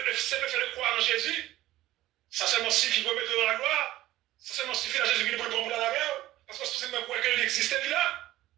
fait de croire en Jésus, ça seulement suffit pour mettre dans la gloire, ça seulement suffit à Jésus qui nous prend pour la guerre, parce que c'est même croire qu'il existait là.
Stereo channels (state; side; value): quieter; left; 15.6 dB